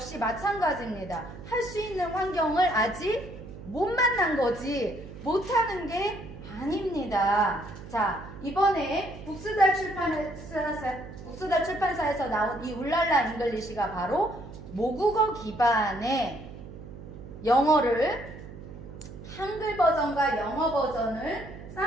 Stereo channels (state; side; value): noise; right; hum, 14 dB below the sound